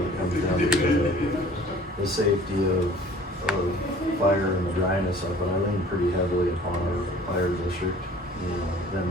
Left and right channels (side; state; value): both; normal; correlation 0.50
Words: it comes down to the safety of fire and the dryness of it, I lean pretty heavily upon our fire district, you know, them